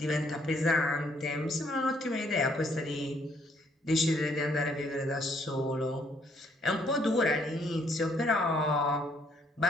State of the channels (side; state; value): both; normal; correlation 0.68